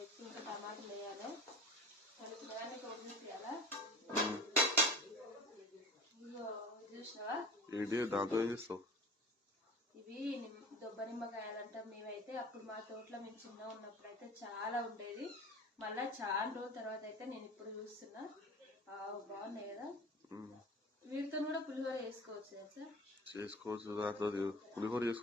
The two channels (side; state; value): both; normal; correlation 0.38